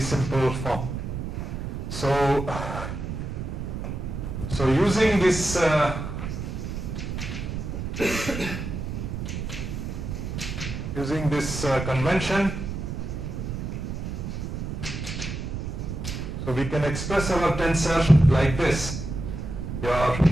simple form. So using this convention, so we can express our tensor like this. Your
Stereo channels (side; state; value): right; noise; rumble, 5 dB below the sound